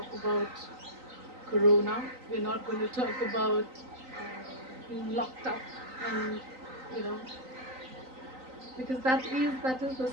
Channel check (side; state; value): left; late; 3.9 ms